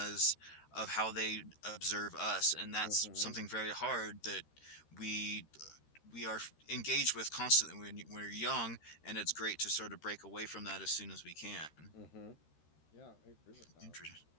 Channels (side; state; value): right; late; 13 ms